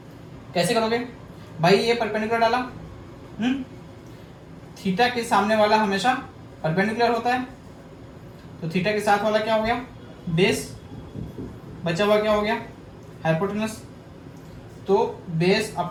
कैसे करोगे भाई, ये परपेंडिकुलर डाला, थीटा के सामने वाला हमेशा परपेंडिकुलर होता है, तो थीटा के साथ वाला क्या हो गया बेस, बचा हुआ क्या हो गया हाइपोटेनस, तो base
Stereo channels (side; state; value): both; identical; correlation 1.00